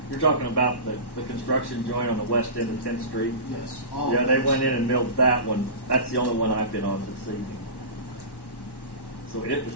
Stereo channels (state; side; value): late; right; 1.1 ms